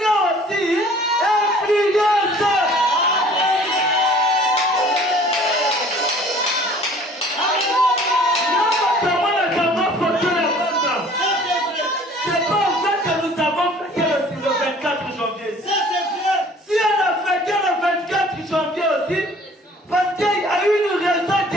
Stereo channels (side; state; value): both; normal; correlation 0.51